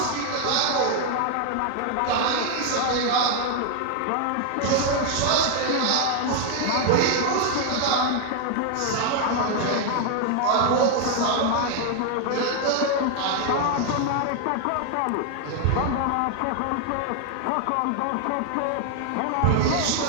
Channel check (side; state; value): both; different; correlation 0.00